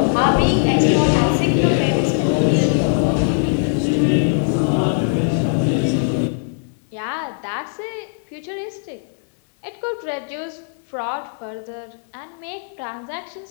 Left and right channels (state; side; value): silent; right; digital silence